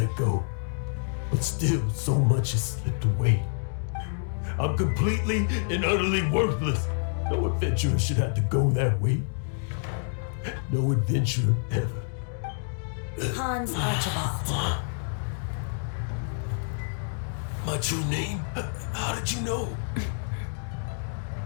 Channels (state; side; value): silent; right; digital silence